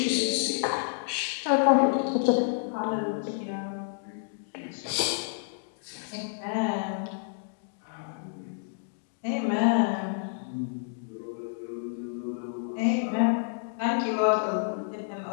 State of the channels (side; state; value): right; silent; digital silence